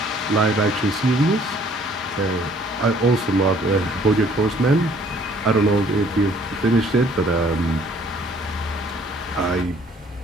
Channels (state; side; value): normal; both; correlation 0.59